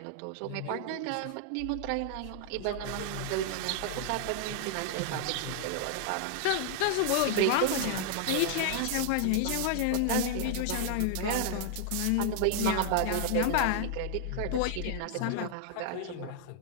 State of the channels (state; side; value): different; both; correlation 0.00